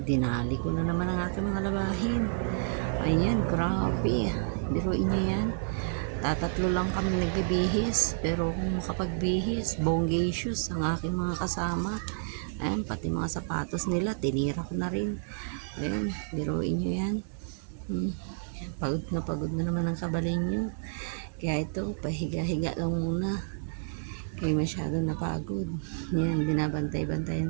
dinali ko na naman ang aking mga labahin. Ayan, grabe. Biruin nyo yan. Tatatlo lang kami nagbibihis. Pero kung makapagbihis, bongacious ang aking mga kasama. Ayan, pati mga sapatos nila, tinira ko na rin. Ayan, biruin nyo yan. Pagod na naman ang kabalin nyo. Kaya ito, pahiga-higa lang muna. Kaya masyado napagod. Yan,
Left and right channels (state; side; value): silent; left; 58 dB below the other